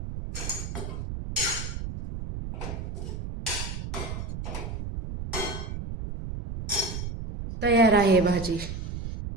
तयार आहे भाजी.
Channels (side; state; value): right; noise; rumble, 6 dB below the sound